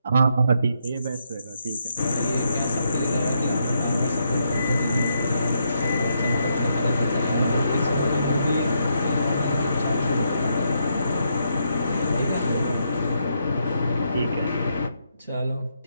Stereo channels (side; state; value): both; inverted; correlation -0.78